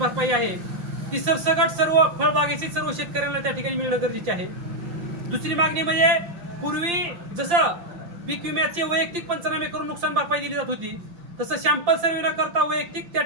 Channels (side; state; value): left; late; 5.8 ms